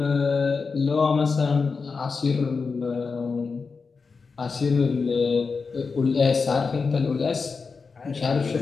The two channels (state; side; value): quieter; right; 4.8 dB